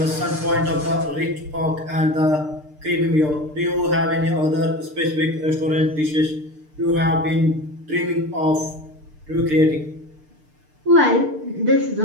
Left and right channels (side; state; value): left; late; 6.6 ms